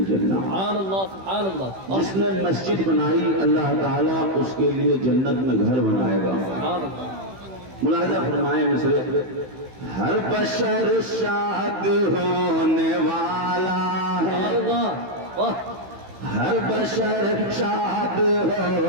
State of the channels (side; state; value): left; late; 16 ms